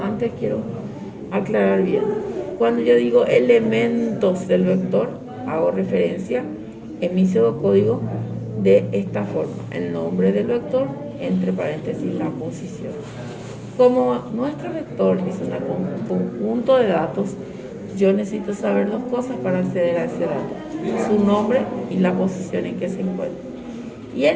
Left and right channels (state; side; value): identical; both; correlation 1.00